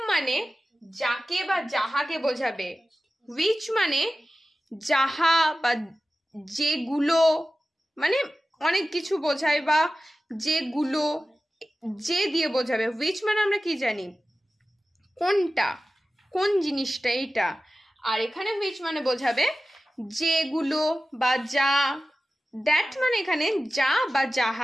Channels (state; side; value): normal; both; correlation 0.95